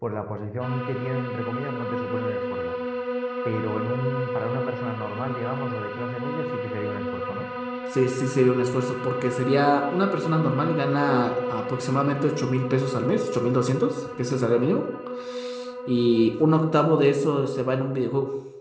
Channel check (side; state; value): both; identical; correlation 1.00